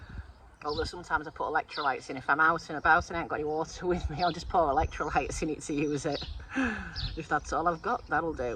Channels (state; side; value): identical; both; correlation 1.00